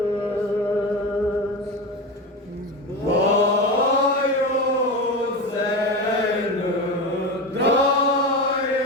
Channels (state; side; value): normal; both; correlation 0.22